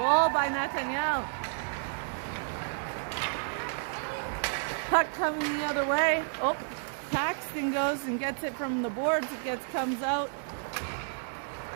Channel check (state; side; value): silent; left; 57 dB below the other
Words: by Nathaniel. Puck coming the other way. Oh, Paxton goes and gets it from the boards. Comes out.